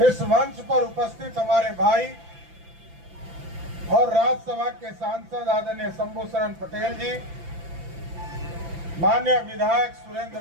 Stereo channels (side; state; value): left; late; 5.9 ms